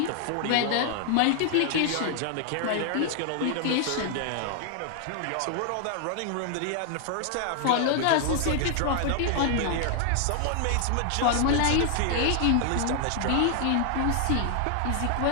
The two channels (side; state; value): both; different; correlation 0.00